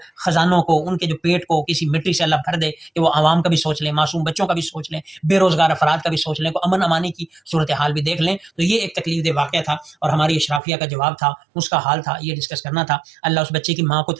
خزانوں کو، ان کے جو پیٹ کو کسی مٹی سے اللہ بھر دے کہ وہ عوام کا بھی سوچ لیں، معصوم بچوں کا بھی سوچ لیں، بے روزگار افراد کا بھی سوچ لیں، کو امن امانی کی صورتحال بھی دیکھ لیں. تو یہ ایک تکلیف دہ واقعہ تھا اور ہماری اشرافیہ کا جواب تھا، اس کا حال تھا، یہ ڈسکس کرنا تھا. اللہ اس بچے کی ماں کو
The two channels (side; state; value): left; drops out; at 10.6 s